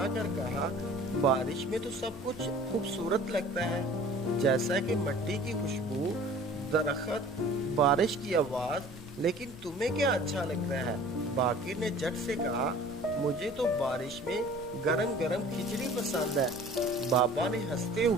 कर कहा, बारिश में तो सब कुछ खूबसूरत लगता है, जैसा कि मिट्टी की खुशबू, दरख्त, बारिश की आवाज। लेकिन तुम्हें क्या अच्छा लगता है? बाकिर ने झट से कहा, मुझे तो बारिश में गरम गरम खिचड़ी पसंद है। बाबा ने हंसते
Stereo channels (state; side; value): noise; left; rumble, 20 dB below the sound